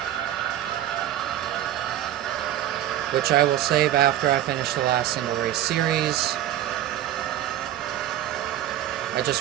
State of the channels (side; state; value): left; quieter; 12.2 dB